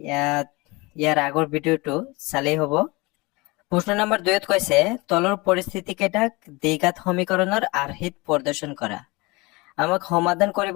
ইয়াৰ আগৰ ভিডিওটো চালেই হ'ব। প্ৰশ্ন নম্বৰ 2ত কৈছে তলৰ পৰিস্থিতি কেইটাক দ্বিঘাত সমীকৰণৰ আৰ্হিত প্ৰদৰ্শন কৰা। আমাক সমাধান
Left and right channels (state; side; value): quieter; right; 24.6 dB